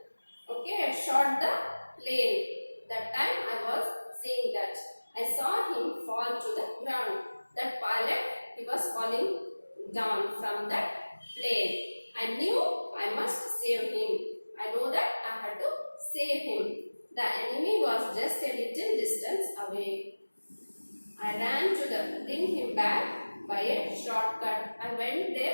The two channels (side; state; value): both; inverted; correlation -1.00